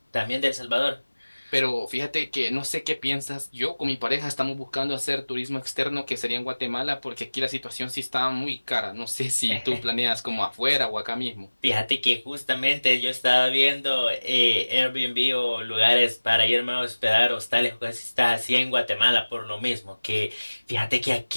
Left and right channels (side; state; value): both; inverted; correlation -1.00